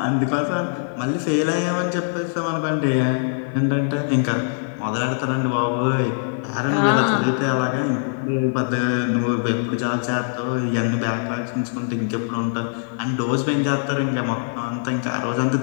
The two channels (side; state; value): right; silent; 64 dB below the other